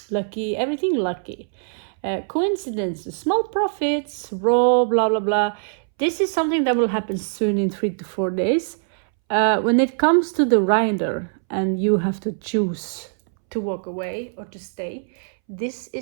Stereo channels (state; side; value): silent; left; 63 dB below the other